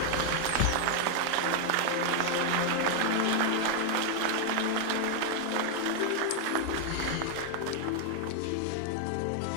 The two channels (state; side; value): different; both; correlation 0.00